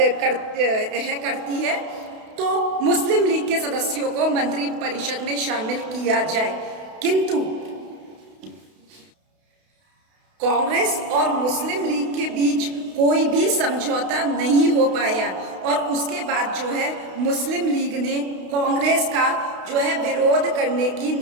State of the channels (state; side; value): late; left; 32 ms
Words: करती है, तो मुस्लिम लीग के सदस्यों को मंत्री परिषद में शामिल किया जाए। किंतु कांग्रेस और मुस्लिम लीग के बीच कोई भी समझौता नहीं हो पाया और उसके बाद जो है मुस्लिम लीग ने कांग्रेस का जो है विरोध करने की